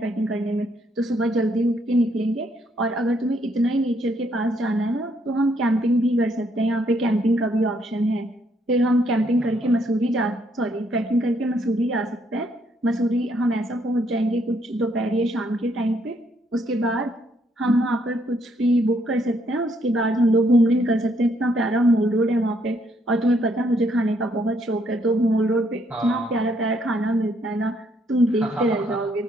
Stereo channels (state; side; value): normal; both; correlation 0.71